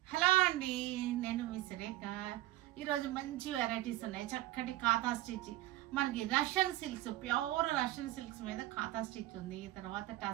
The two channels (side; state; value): left; quieter; 16.2 dB